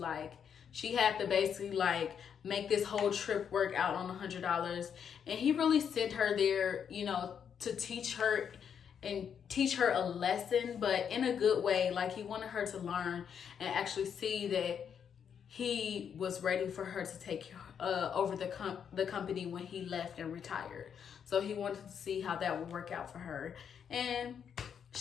she had to basically like make this whole trip work out on $100. And he really sent her there, you know, to teach her and teach her a lesson, but in a good way. Like, he wanted her to learn and actually see that he was ready for her to take over the company when he left and retired. So he wanted to see how that would work out for her. And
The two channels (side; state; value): right; quieter; 7.8 dB